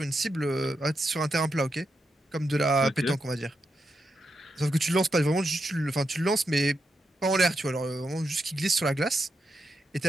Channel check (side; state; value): both; normal; correlation 0.85